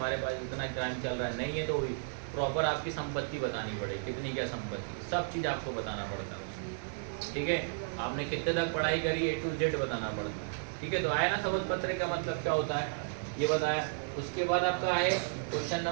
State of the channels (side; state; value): left; silent; digital silence